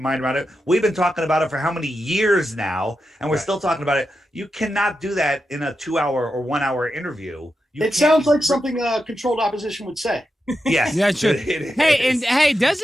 around it. We've been talking about it for how many years now, and we're still talking about it. You cannot do that in a 2-hour or 1-hour interview. It sounds like something controlled opposition would say. Yes. Yeah, sure. Hey,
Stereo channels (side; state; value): both; normal; correlation 0.88